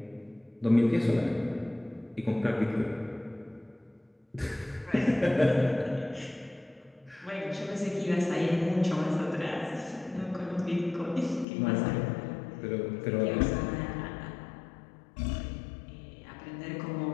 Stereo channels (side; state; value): right; drops out; at 11.5 s